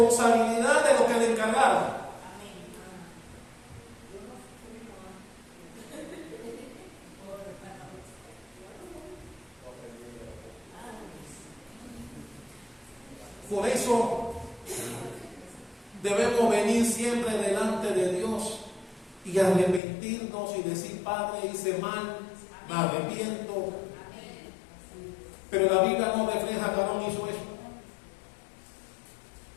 de lo que le encargaron. Por eso debemos venir siempre delante de Dios y arrepentirnos y decir: Padre, hice mal, me arrepiento. Pero la Biblia no refleja que Aarón hizo eso.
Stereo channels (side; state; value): right; drops out; at 19.8 s